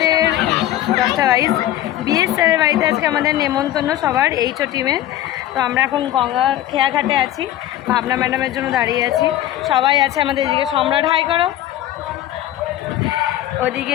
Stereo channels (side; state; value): right; quieter; 13.3 dB